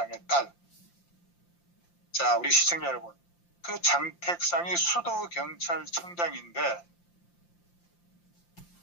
딸. 자, 우리 시청자 여러분, 그 장택상이 수도경찰청장인데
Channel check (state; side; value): late; right; 5.8 ms